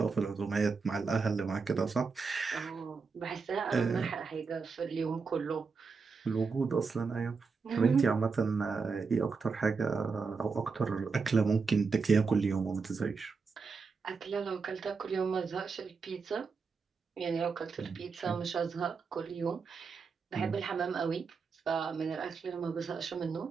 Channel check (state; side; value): quieter; left; 4.9 dB